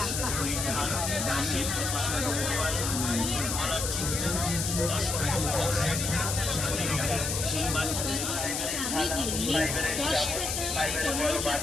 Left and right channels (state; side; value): noise; left; hiss, 2 dB below the sound